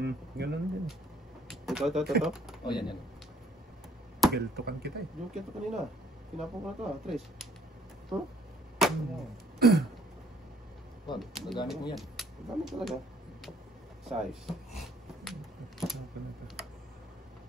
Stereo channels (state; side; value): normal; both; correlation 0.61